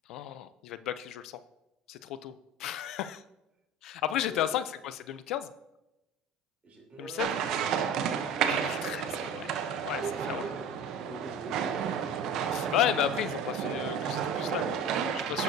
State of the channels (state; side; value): normal; both; correlation 0.35